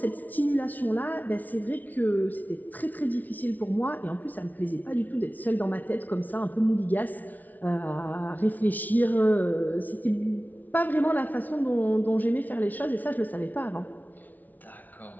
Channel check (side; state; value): right; late; 0.078 ms